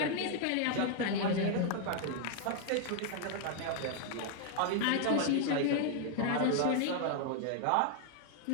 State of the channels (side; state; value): both; different; correlation 0.00